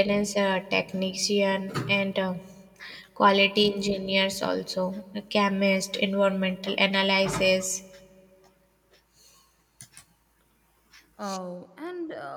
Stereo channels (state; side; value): identical; both; correlation 1.00